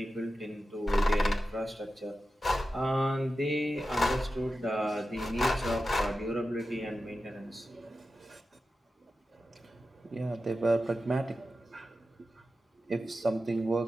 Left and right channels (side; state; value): both; normal; correlation 0.92